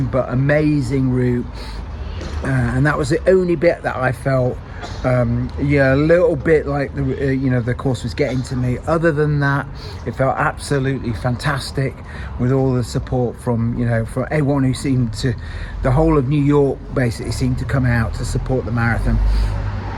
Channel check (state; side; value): identical; both; correlation 1.00